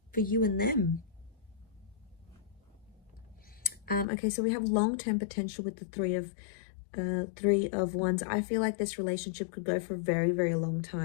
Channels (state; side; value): drops out; right; at 4.0 s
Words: For you and them. Okay, so we have long-term potential with the Three of Wands. I feel like this relationship could go for a very, very long